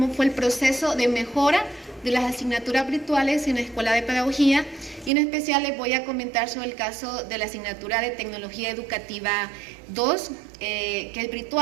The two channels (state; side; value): drops out; left; at 5.1 s